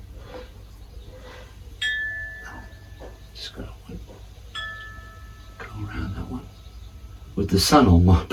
Just gotta go around that one. With the sun on my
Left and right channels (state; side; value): identical; both; correlation 1.00